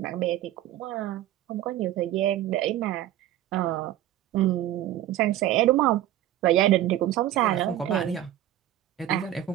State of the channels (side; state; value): left; quieter; 12.8 dB